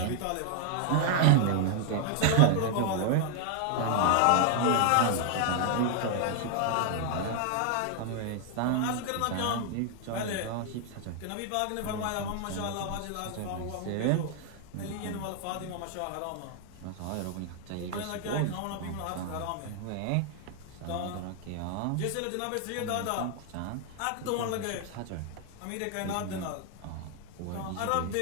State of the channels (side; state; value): both; different; correlation 0.00